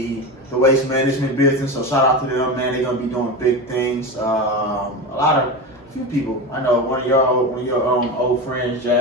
waste management business. So shout out to them, man. They're gonna be doing big things. A few people. I know one of your old friends,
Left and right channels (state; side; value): normal; both; correlation 0.23